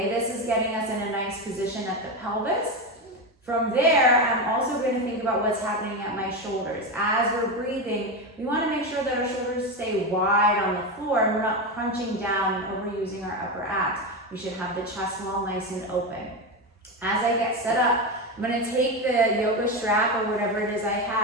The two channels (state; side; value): normal; both; correlation 0.15